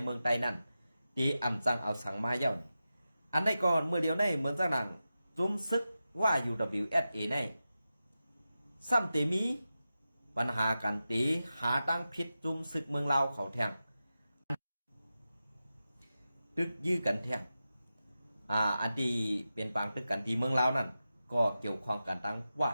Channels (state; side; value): inverted; both; correlation -0.92